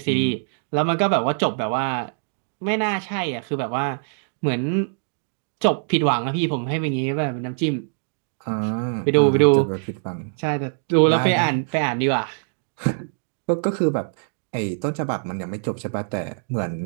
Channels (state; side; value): silent; left; digital silence